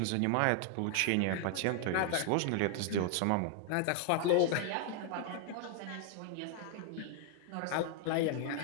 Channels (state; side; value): different; both; correlation 0.00